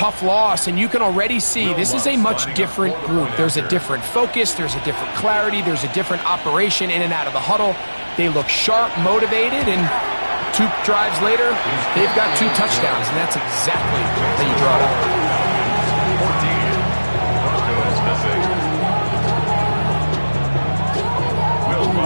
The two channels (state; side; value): inverted; both; correlation -1.00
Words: loss, and you can already see this is a much different group. There's a different focus, there's a different clarity, there's a different operation in and out of the huddle. They look sharp, motivated, and 2 drives later, they've got 2 touchdowns, and that's exactly how you draw it up. 14, Will